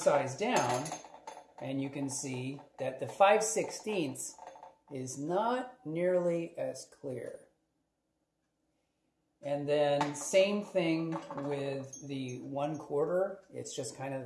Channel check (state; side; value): identical; both; correlation 1.00